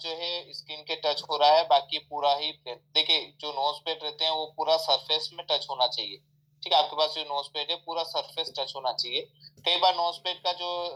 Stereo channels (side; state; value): both; identical; correlation 1.00